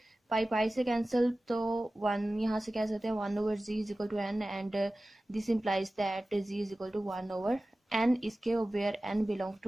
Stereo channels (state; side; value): normal; both; correlation 0.96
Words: पाई पाई से कैंसिल तो 1 यहाँ से कह सकते हैं 1/z is equal to n and this implies that z is equal to 1/n इसके where n belong